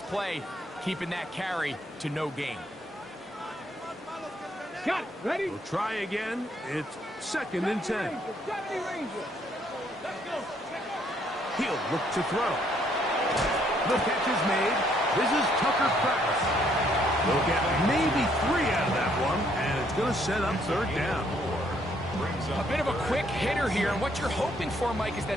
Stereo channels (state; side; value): normal; both; correlation 0.68